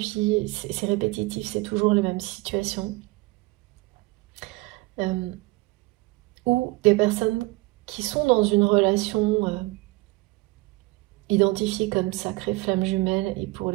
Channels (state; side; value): quieter; left; 22.6 dB